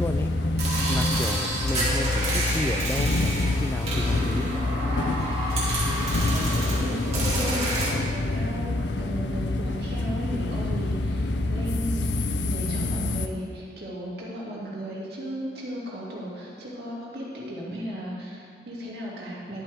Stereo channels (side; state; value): both; normal; correlation 0.69